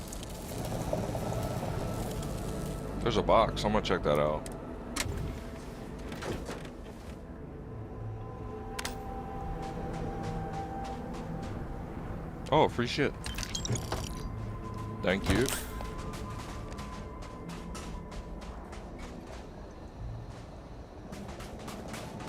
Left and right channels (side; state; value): both; identical; correlation 1.00